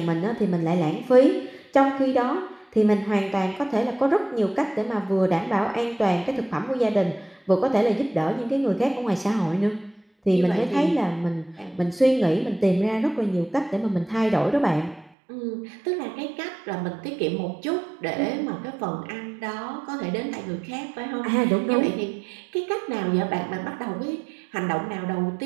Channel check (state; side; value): drops out; left; at 15.1 s